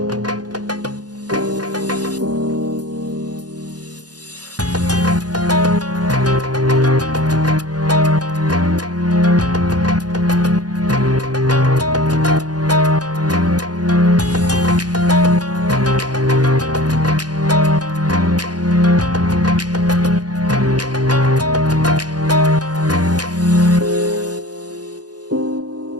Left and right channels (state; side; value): late; left; 0.69 ms